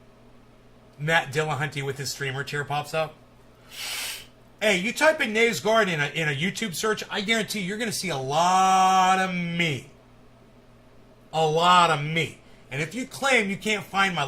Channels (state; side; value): identical; both; correlation 1.00